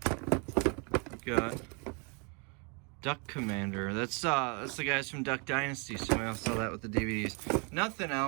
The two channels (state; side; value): quieter; left; 34.0 dB